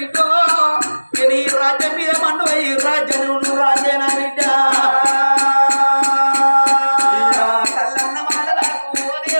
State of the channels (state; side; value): inverted; both; correlation -1.00